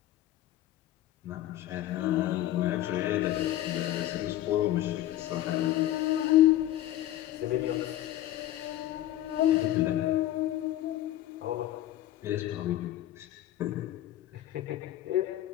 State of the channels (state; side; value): quieter; right; 13.8 dB